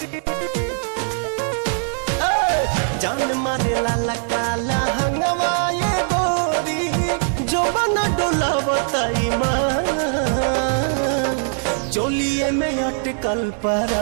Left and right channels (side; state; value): left; silent; digital silence